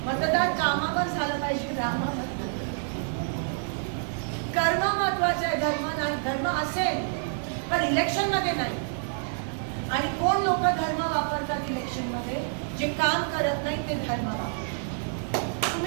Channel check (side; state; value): left; silent; digital silence